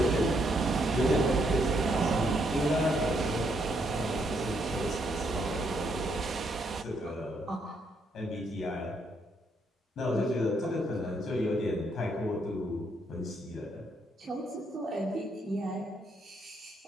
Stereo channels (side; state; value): both; normal; correlation 0.74